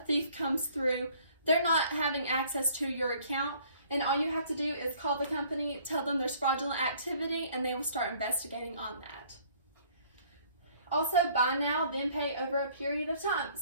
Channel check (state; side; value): inverted; both; correlation -0.58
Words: comes through, they're not having access to your account, and all you have to do is call the company, tell them there's fraudulent activity, and they will start investigating on that. Also, buy now, then pay over a period of time.